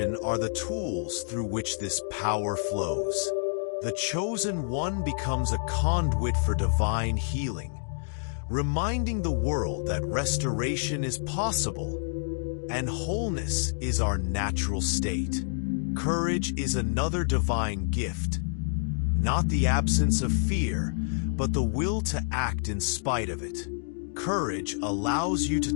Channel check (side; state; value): right; silent; digital silence